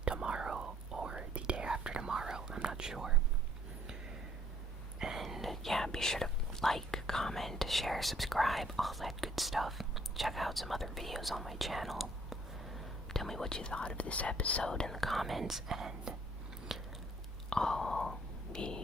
tomorrow or the day after tomorrow. I'm not sure. And yeah, be sure to like, comment, share, subscribe, all that good stuff. Check out some other videos on my channel. Tell me what you thought of this episode in the comments, and I'll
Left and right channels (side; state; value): both; normal; correlation 0.62